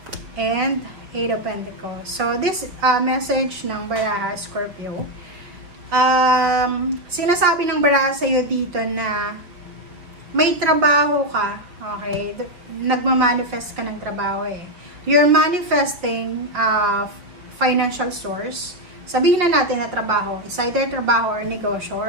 and Eight of Pentacles. So, this message ng baraha, Scorpio, sinasabi ng baraha sa'yo dito na may trabaho ka, okay? Nagmamanifest ka ng trabaho eh. You're manifesting financial source. Sabihin na natin na trabaho, is either trabaho or negosyo,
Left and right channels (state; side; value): late; left; 5.3 ms